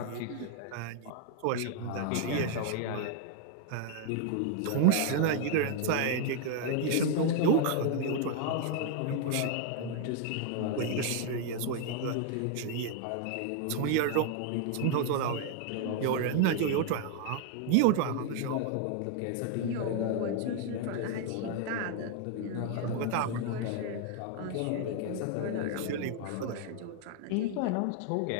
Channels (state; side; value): different; both; correlation 0.00